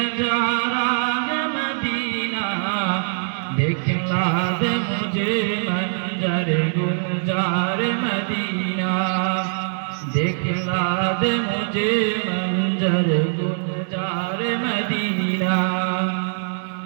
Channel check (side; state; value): left; silent; digital silence